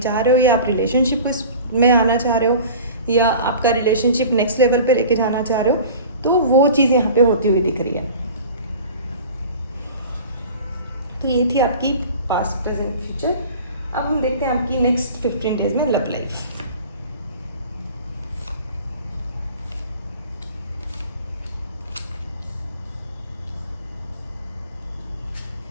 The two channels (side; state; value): both; inverted; correlation -0.40